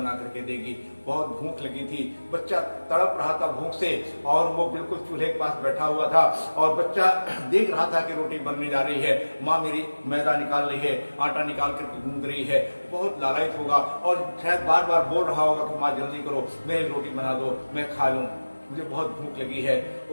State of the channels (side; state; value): both; inverted; correlation -1.00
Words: करके देगी। बहुत भूख लगी थी, बच्चा तड़प रहा था भूख से, और वो बिल्कुल चूल्हे के पास बैठा हुआ था, और बच्चा देख रहा था कि रोटी बनने जा रही है, माँ मेरी मैदा निकाल रही है, आटा निकाल करके गूंद रही है। बहुत लालायित होगा और शायद बार बार बोल रहा होगा कि माँ जल्दी करो, मेरी रोटी बना दो, मैं खा लूं, मुझे बहुत भूख लगी है।